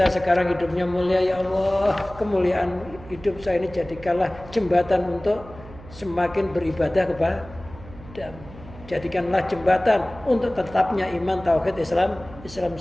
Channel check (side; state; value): right; noise; hum, 18 dB below the sound